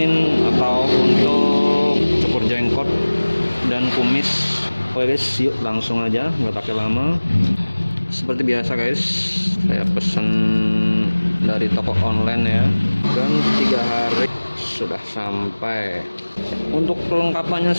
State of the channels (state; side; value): inverted; both; correlation -1.00